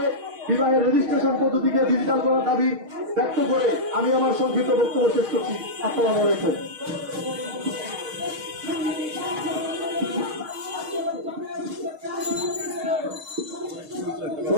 বিবাহের রেজিস্ট্রেশন পদ্ধতিকে ডিজিটাল করার দাবি ব্যক্ত করে আমি আমার সংক্ষিপ্ত বক্তব্য শেষ করছি। আসসালামু আলাইকুম।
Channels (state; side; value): late; left; 6.5 ms